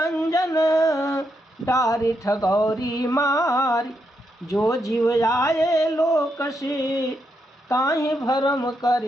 डारी ठगौरी मारी, जो जीव आए लोक से, ताहि भरम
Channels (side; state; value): both; normal; correlation 0.81